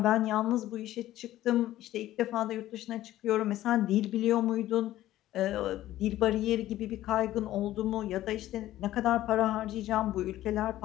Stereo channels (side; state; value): right; quieter; 14.3 dB